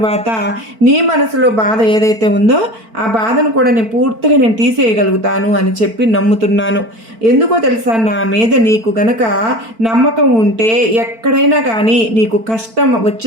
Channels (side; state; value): left; late; 4.5 ms